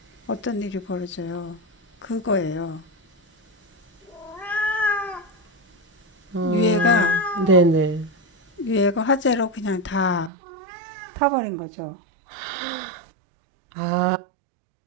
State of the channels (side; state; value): left; drops out; at 10.3 s